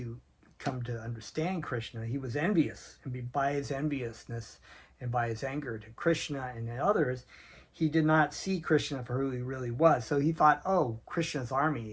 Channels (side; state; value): both; identical; correlation 1.00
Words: come to understand Krishna, he was envious. And by his enviousness and by his anger to Krishna and others, he did not see Krishna for who he really was. So he thought, oh, Krishna's